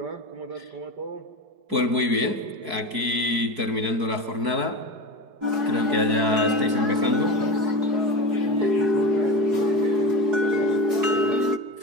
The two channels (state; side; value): late; left; 4.7 ms